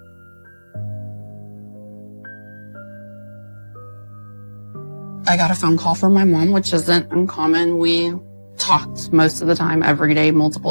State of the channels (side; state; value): both; inverted; correlation -1.00